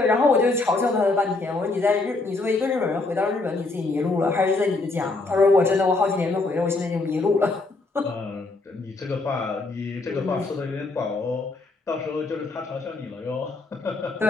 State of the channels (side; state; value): right; quieter; 3.4 dB